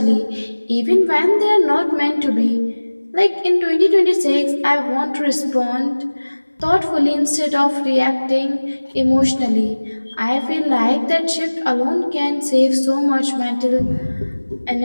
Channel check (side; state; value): both; inverted; correlation -1.00